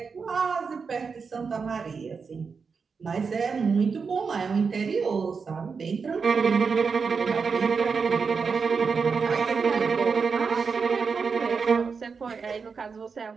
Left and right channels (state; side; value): quieter; left; 5.3 dB